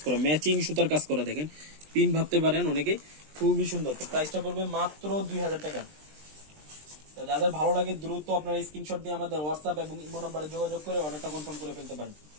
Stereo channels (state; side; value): late; left; 20 ms